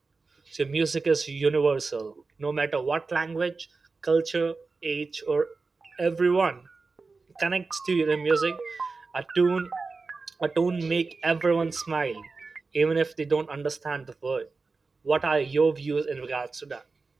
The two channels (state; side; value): quieter; left; 4.1 dB